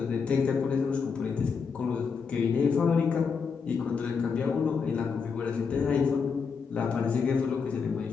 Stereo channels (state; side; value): quieter; right; 5.7 dB